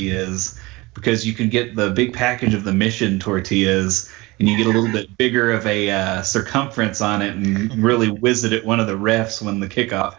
because you can get the big package of the Mission tortillas, and you get a little bit bigger of a circumference on it and really whiz it at one of the refs when the kickoff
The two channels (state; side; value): quieter; left; 22.5 dB